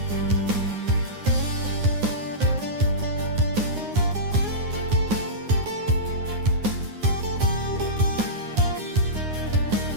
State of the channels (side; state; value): left; late; 9.7 ms